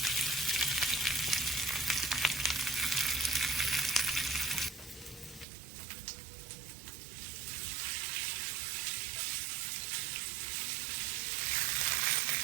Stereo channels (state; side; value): drops out; left; at 5.5 s